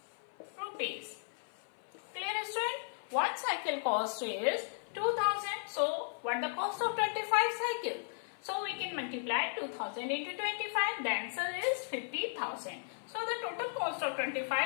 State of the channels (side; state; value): right; silent; 54 dB below the other